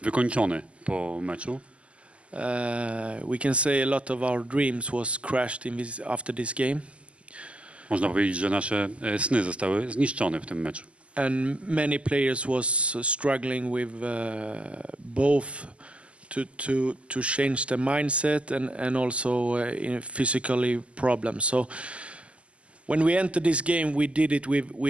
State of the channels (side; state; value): left; late; 0.058 ms